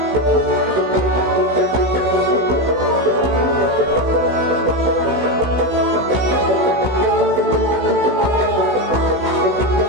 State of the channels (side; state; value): left; late; 16 ms